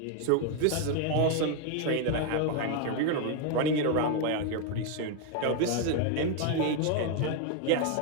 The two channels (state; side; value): different; both; correlation 0.01